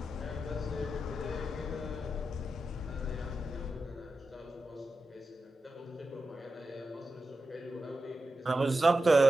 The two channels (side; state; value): both; normal; correlation 0.90